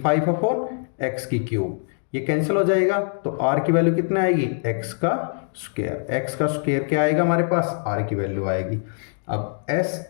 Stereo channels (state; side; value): silent; right; 63 dB below the other